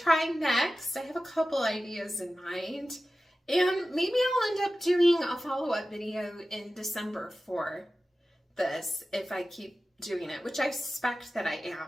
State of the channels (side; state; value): both; normal; correlation 0.95